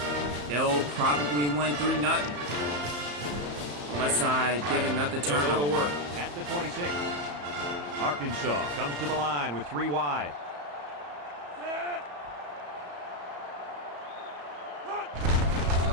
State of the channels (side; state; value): left; late; 34 ms